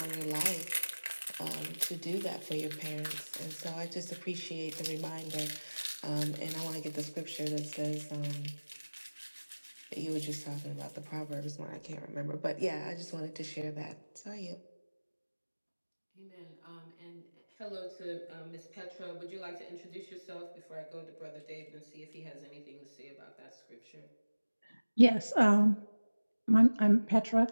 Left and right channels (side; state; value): both; inverted; correlation -1.00